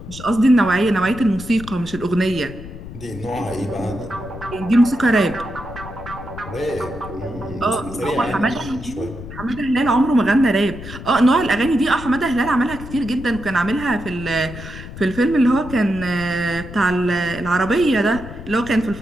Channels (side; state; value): left; noise; rumble, 12 dB below the sound